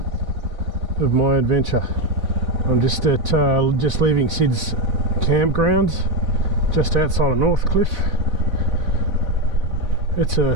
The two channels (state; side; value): late; left; 4.0 ms